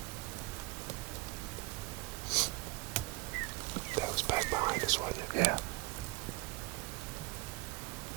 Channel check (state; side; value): quieter; left; 23.1 dB